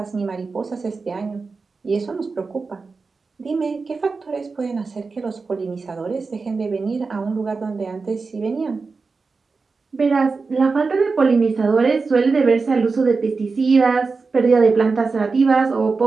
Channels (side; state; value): left; quieter; 4.4 dB